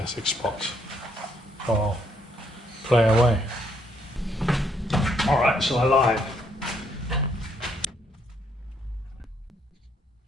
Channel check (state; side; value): normal; both; correlation 0.70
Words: 6 spots. So I'll play away. Alright, so I lied.